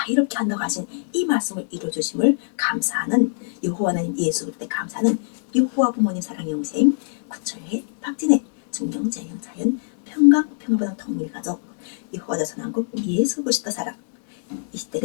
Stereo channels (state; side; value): silent; right; digital silence